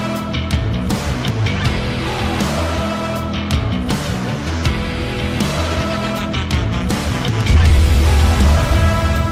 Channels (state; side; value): identical; both; correlation 1.00